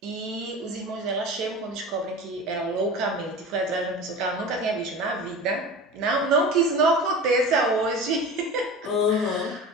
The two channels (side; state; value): both; normal; correlation 0.33